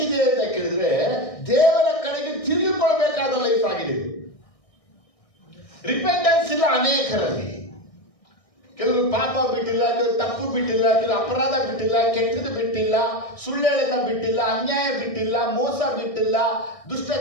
ಅಂತ ಕೇಳಿದ್ರೆ ದೇವರ ಕಡೆಗೆ ತಿರುಗಿಕೊಳ್ಬೇಕಾದ ಲೈಫ್ ಆಗಿದೆ. ರಿಪೆಂಟೆನ್ಸ್ ಇಲ್ಲ ಅನೇಕರಲ್ಲಿ. ಕೆಲವರು ಪಾಪ ಬಿಟ್ಟಿಲ್ಲ, ಕೆಲವರು ತಪ್ಪು ಬಿಟ್ಟಿಲ್ಲ, ಕೆಲವರು ಅಪರಾಧ ಬಿಟ್ಟಿಲ್ಲ, ಕೆಟ್ಟದ್ದು ಬಿಟ್ಟಿಲ್ಲ, ಸುಳ್ಳೆಳನ್ನ ಬಿಟ್ಟಿಲ್ಲ, ಅನ್ಯಾಯ ಬಿಟ್ಟಿಲ್ಲ, ಮೋಸ ಬಿಟ್ಟಿಲ್ಲ, ದುಷ್ಟ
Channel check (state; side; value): late; right; 1.6 ms